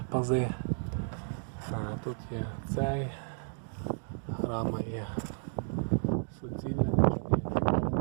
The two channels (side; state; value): left; silent; digital silence